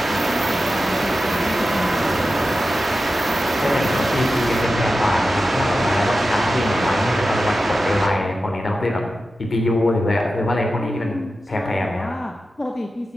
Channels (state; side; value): normal; both; correlation 0.93